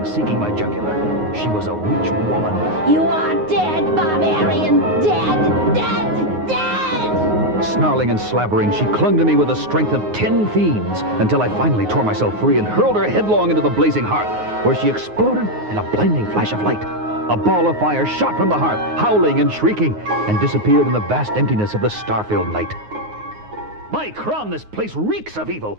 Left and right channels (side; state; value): left; late; 9.5 ms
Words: seeking my jugular. She was a witch woman. You are dead, barbarian! Dead! Dead! Dead! Snarling and slavering, she clung to me with the strength of 10 fiends until I finally tore myself free and hurled her headlong into the blazing hearth, where she exploded in a blinding flash of light. A ball of fire shot from the hearth, howling and shrieking, and disappeared in the vast emptiness of the star-filled night. By crom, this place reeks of evil.